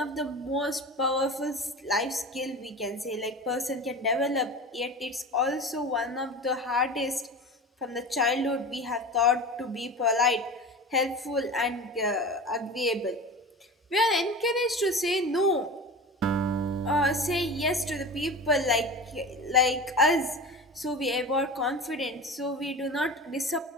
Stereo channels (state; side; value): normal; both; correlation 0.31